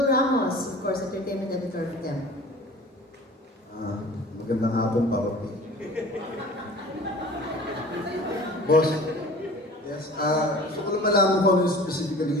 Ramos, of course, entertainment editor for them. Magandang hapon, Papa P. Boss, yes, gusto ko lang malaman kung ano specifically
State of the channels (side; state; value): both; normal; correlation 0.42